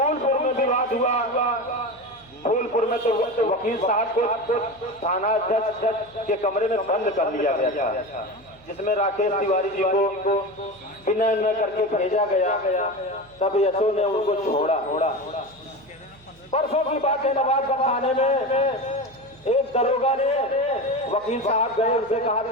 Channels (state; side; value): noise; right; hum, 27 dB below the sound